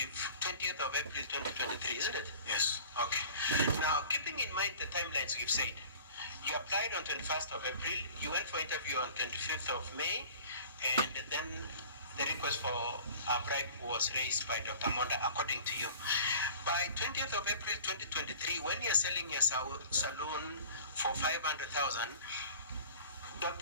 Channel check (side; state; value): both; inverted; correlation -0.44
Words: of April 2023, isn't it? Yes. Okay. Now, keeping in mind the timelines we've said, you applied on 21st of April, you went for interview on 25th of May, and then the request for a bribe was raised by Dr. Monda, according to you. By 20th of April 2023, when you're selling your saloon for 500,000,